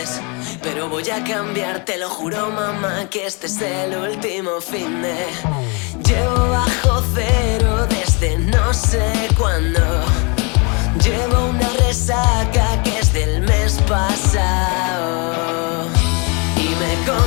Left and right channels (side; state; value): right; quieter; 32.2 dB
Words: Pero voy a cambiar, te lo juro mamá, que este es el último fin de. Llevo bajo cero desde no sé cuándo. Llevo una resaca que es del mes pasado. Y me